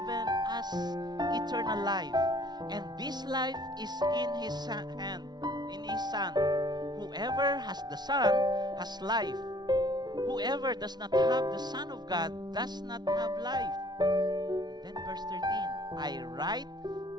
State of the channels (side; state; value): left; late; 0.20 ms